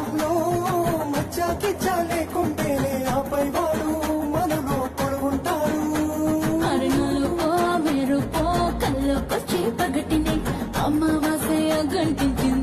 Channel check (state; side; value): identical; both; correlation 1.00